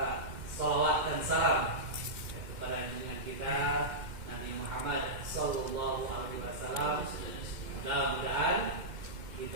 sholawat dan salam kepada junjungan kita Nabi Muhammad sallallahu alaihi wasallam. Mudah-mudahan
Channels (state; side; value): late; left; 2.1 ms